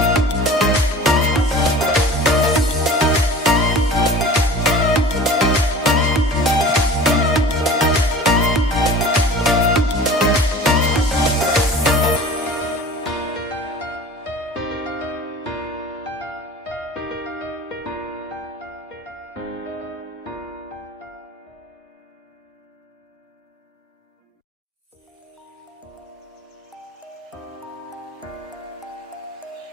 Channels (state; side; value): normal; both; correlation 0.40